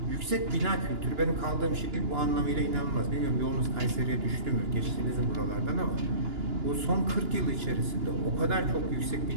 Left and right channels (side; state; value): left; late; 2.9 ms